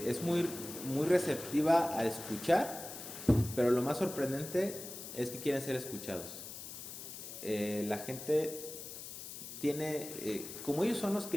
es muy receptiva a escuchar, pero lo más sorprendente es que quieren ser escuchados. La gente tiene, como ellos son los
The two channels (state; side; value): noise; left; hiss, 10 dB below the sound